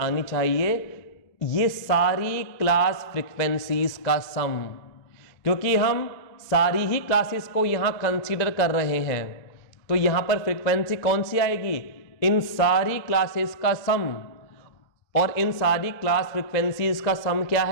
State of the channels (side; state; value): right; late; 2.0 ms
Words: चाहिए ये सारी क्लास फ्रीक्वेंसीज का सम, क्योंकि हम सारी ही क्लासेस को यहां कंसीडर कर रहे हैं। तो यहां पर फ्रीक्वेंसी कौन सी आएगी? इन सारी क्लासेस का सम, और इन सारी क्लास फ्रीक्वेंसीज का सम क्या